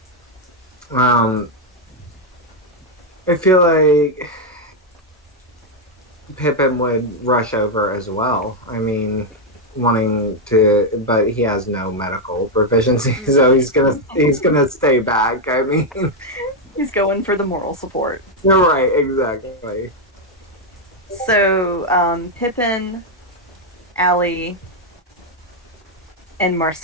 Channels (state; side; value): normal; both; correlation 0.01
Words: I feel like Pippin would rush over as well. I mean, wanting to, but he has no medical proficiency, so he's gonna stay back. I mean, he's going for the moral support. You're right, exactly. So, Pippin, Alli, and